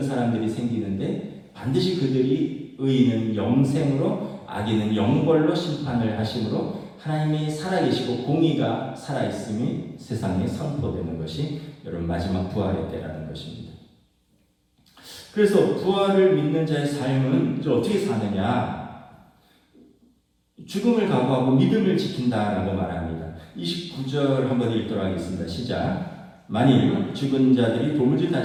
사람들이 생기는데 반드시 그들이 의인은 영생으로 악인은 영벌로 심판을 하심으로 하나님이 살아계시고 공의가 살아있음이 세상에 선포되는 것이 여러분 마지막 부활의 때라는 것입니다. 그래서 부활을 믿는 자의 삶은 이제 어떻게 사느냐? 죽음을 각오하고 믿음을 지킨다라고 말합니다. 29절 한번 읽도록 하겠습니다. 시작. 만일 죽은 자들이 도무지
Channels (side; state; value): both; identical; correlation 1.00